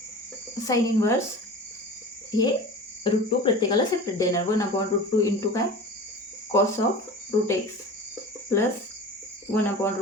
साइन इनवर्स हे रूट 2 प्रत्येकाला सेपरेट देणार. 1 अपॉन रूट 2 इंटू काय cos of root X plus 1 upon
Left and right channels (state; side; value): normal; both; correlation 0.35